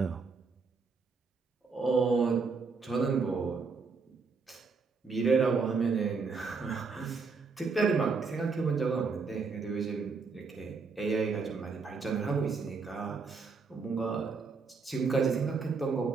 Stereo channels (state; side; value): quieter; left; 4.7 dB